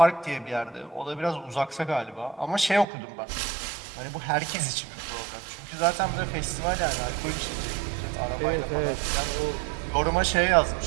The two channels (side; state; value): left; drops out; at 2.9 s